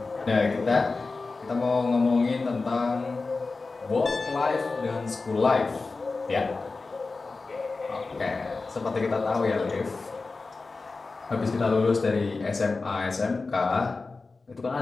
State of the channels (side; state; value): right; quieter; 3.9 dB